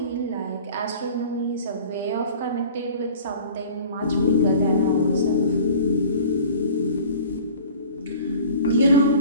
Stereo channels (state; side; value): inverted; both; correlation -0.44